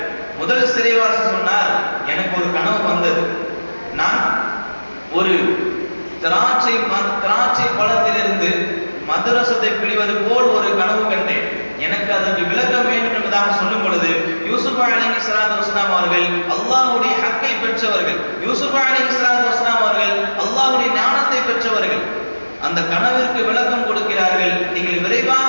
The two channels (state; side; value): inverted; both; correlation -1.00